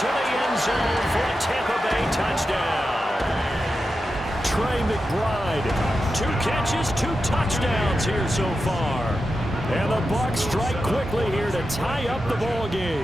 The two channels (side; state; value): both; normal; correlation 0.90